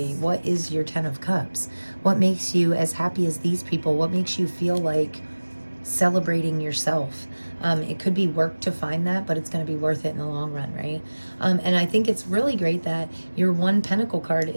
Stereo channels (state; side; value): inverted; both; correlation -1.00